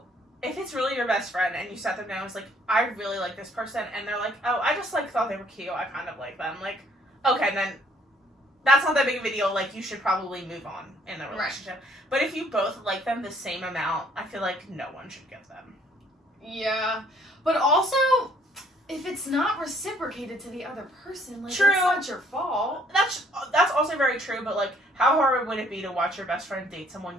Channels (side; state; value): both; normal; correlation 0.63